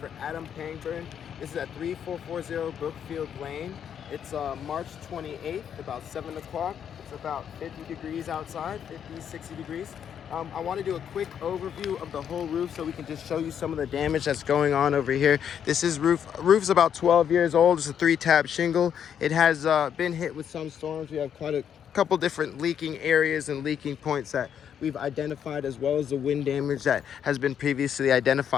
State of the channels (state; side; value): quieter; right; 8.6 dB